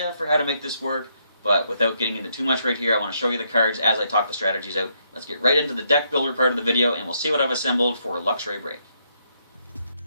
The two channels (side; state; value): both; inverted; correlation -0.75